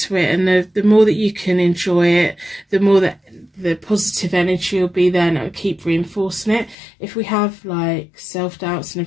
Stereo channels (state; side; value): drops out; right; at 6.8 s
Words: it, and the more that you can enjoy it, the more that the positive energy will be there, and it'll keep reinforcing it. If we have like self-doubts and